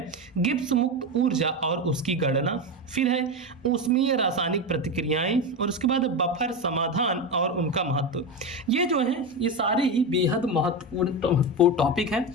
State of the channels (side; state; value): both; normal; correlation 0.17